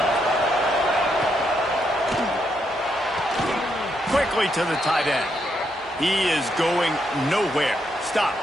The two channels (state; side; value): normal; both; correlation 0.78